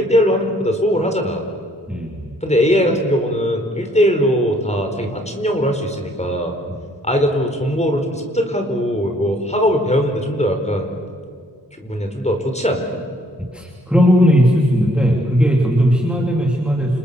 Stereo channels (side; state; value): both; normal; correlation 0.65